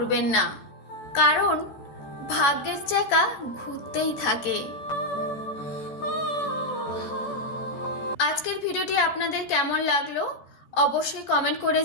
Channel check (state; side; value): late; right; 13 ms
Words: না, কারণ ভাগ্যের চাকা ঘুরতেই থাকে। আজকের ভিডিওটি আপনাদের কেমন লাগলো অবশ্যই কমেন্ট করে